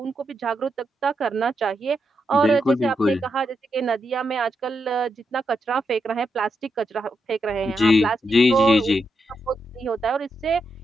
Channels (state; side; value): normal; both; correlation 0.83